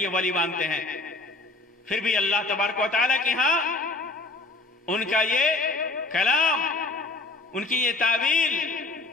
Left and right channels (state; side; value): quieter; right; 3.3 dB